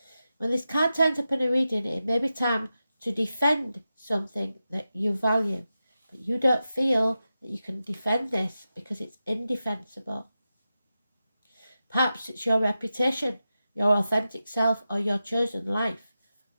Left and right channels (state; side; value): inverted; both; correlation -0.91